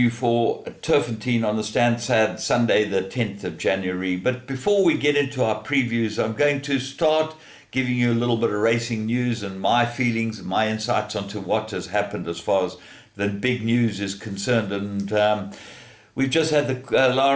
for Turffontein on the Stansted Sunday, the 10th of January. But before we get into our previews, I'm going to start giving you a little bit of racing news and my feelings and my insights onto what has happened as far as the big news is concerned. And we've just had the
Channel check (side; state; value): both; identical; correlation 1.00